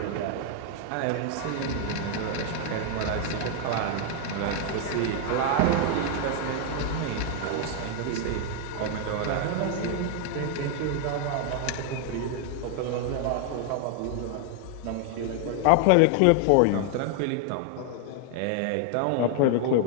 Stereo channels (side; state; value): both; different; correlation 0.00